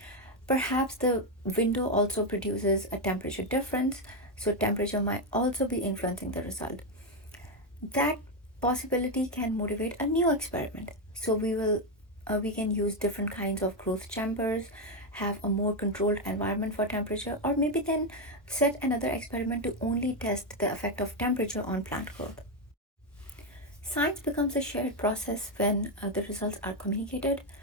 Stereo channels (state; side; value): normal; both; correlation 0.06